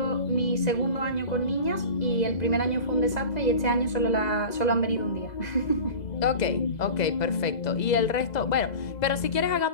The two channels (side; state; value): right; late; 2.0 ms